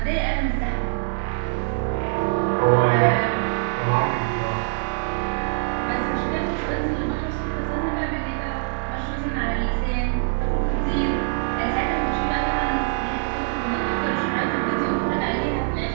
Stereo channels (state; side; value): silent; left; digital silence